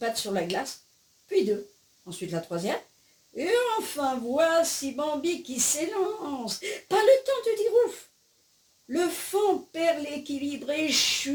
sur la glace, puis deux, ensuite la troisième. Et enfin, voici Bambi qui s'élance. Pas le temps de dire ouf. Le faon perd l'équilibre et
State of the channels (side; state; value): both; identical; correlation 1.00